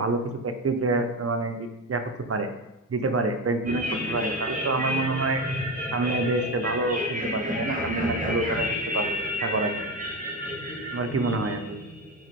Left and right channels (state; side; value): normal; both; correlation 0.17